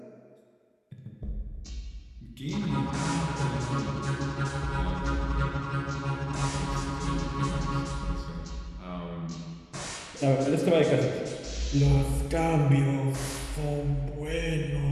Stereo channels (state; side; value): identical; both; correlation 1.00